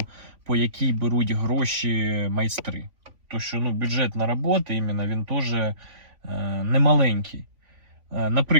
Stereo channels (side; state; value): left; late; 3.5 ms